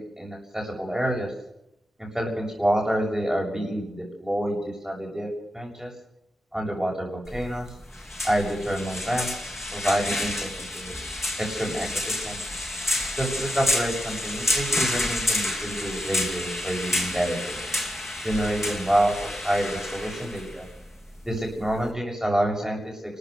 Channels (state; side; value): normal; both; correlation 0.88